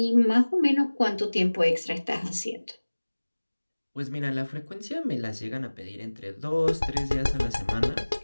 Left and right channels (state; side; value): inverted; both; correlation -1.00